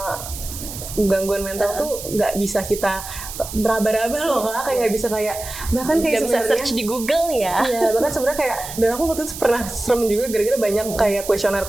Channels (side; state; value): right; noise; hiss, 10 dB below the sound